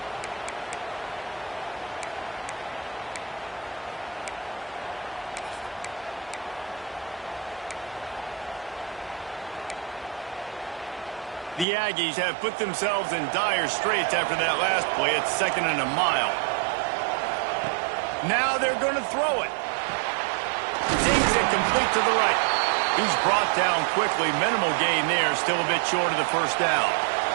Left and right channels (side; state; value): left; drops out; at 11.7 s